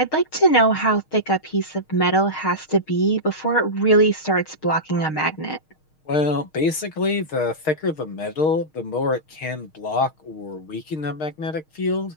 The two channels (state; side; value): late; right; 6.4 ms